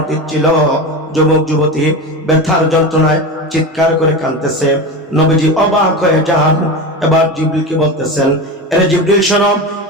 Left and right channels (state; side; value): normal; both; correlation 0.24